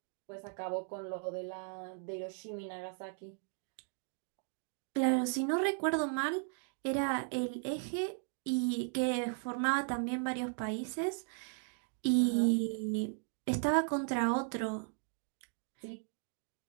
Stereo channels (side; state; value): left; silent; 53 dB below the other